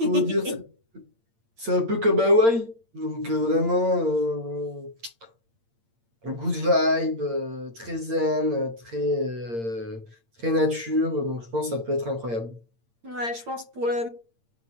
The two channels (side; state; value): left; late; 8.7 ms